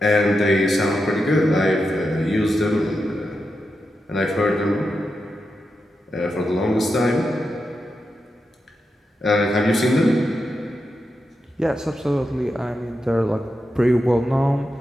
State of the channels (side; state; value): both; normal; correlation 0.88